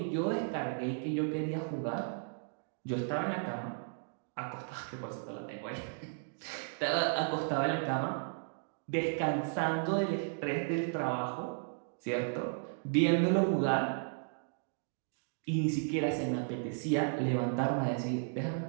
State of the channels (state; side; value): silent; left; digital silence